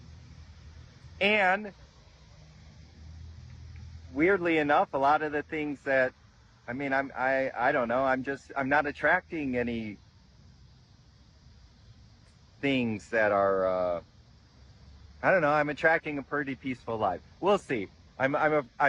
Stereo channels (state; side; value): identical; both; correlation 1.00